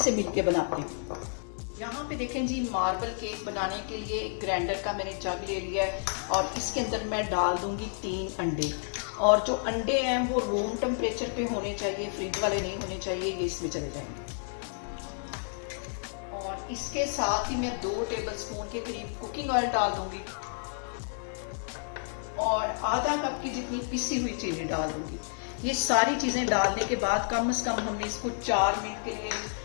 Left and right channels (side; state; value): right; silent; digital silence